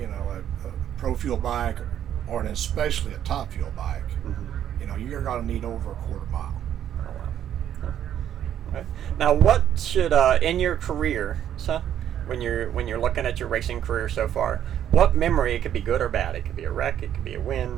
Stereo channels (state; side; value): quieter; left; 10.4 dB